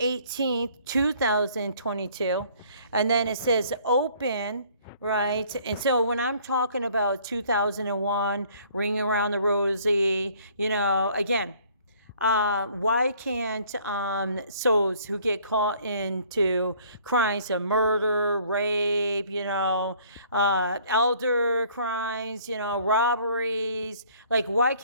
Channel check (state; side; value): inverted; both; correlation -0.57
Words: 2022. And then it says open, right? And so when I'm talking about 2001, Ring Around the Rosie, again, why can't souls who get caught into crimes of murder, rape, elder crimes, robberies, like why